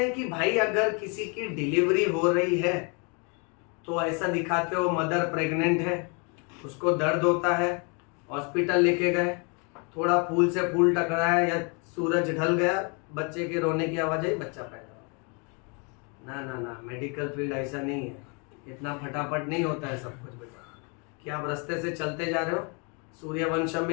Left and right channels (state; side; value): quieter; right; 34.4 dB